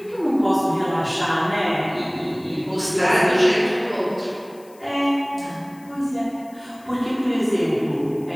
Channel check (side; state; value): left; noise; hiss, 27 dB below the sound